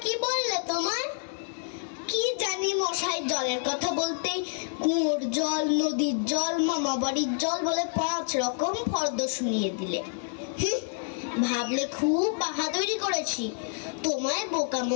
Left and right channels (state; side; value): silent; right; 56 dB below the other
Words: কি বললে তোমায়? কি জানি মশাই, জলের কথা বলতেই কুয়োর জল, নদীর জল, মামা বাড়ির জল বলে 5 রকম ফর্দ শুনিয়ে দিলে। ভাবলে খুব বাহাদুরি করেছি। তোমায় বোকা